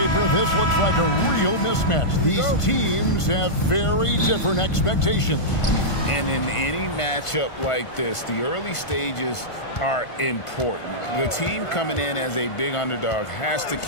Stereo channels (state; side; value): late; right; 1.5 ms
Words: this looks like a real mismatch. These teams have very different expectations. And in any matchup like this, the early stages are important. The team coming in as a big underdog has to